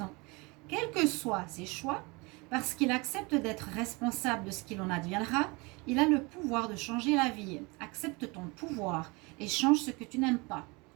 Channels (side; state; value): left; quieter; 26.7 dB